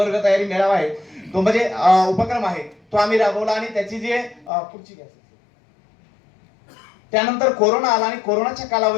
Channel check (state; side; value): drops out; right; at 4.5 s